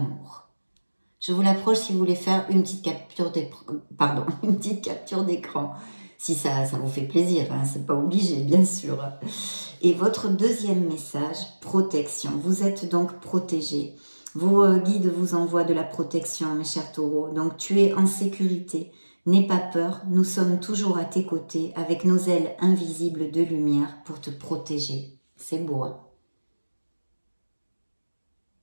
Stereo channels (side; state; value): both; inverted; correlation -1.00